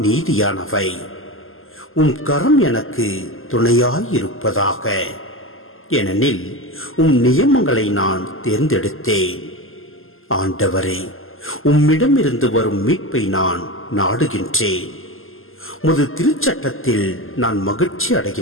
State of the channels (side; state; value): right; late; 0.60 ms